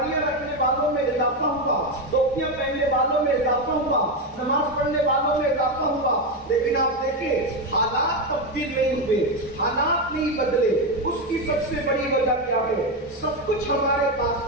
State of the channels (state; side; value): normal; both; correlation 0.10